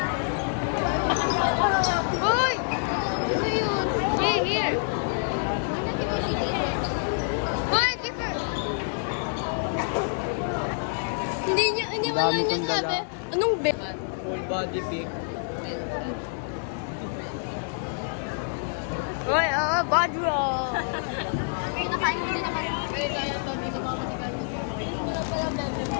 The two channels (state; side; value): silent; right; digital silence